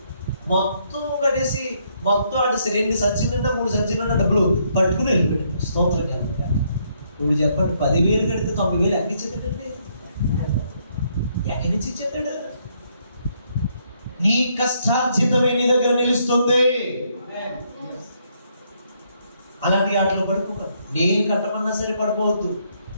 మొత్తం కట్టేసి మొత్తం అటు 2 సంచులు 3 సంచులు డబ్బులు పట్టుకుని వెళ్ళిపోయాడు. స్తోత్రం కనుక. ఇప్పుడు చెప్పండి, 10,000 కడితే 90,000 ఎక్కడి నుంచి ఇచ్చేటండి? ఎక్కడి నుంచి ఇచ్చేటాడు? నీ కష్టార్జితమే నీ దగ్గర నిలుస్తుంది. అలాంటి ఆటలు పడుకోకండి. నేను కట్టమన్నా సరే పడిపోవద్దు.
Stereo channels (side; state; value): both; inverted; correlation -0.72